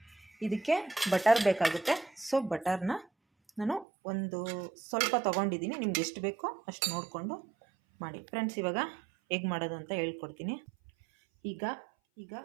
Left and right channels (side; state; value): left; drops out; at 3.9 s